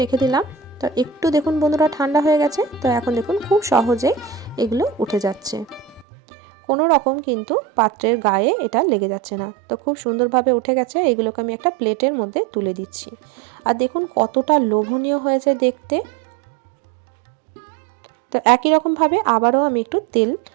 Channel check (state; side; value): drops out; left; at 6.1 s